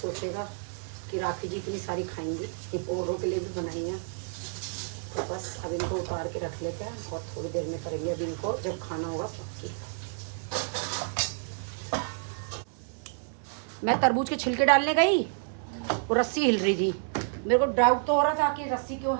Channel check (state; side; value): silent; left; digital silence